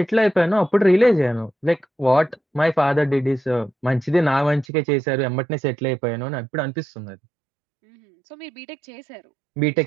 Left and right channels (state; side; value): drops out; left; at 4.7 s